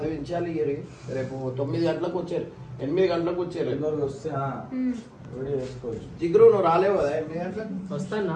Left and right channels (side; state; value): both; identical; correlation 1.00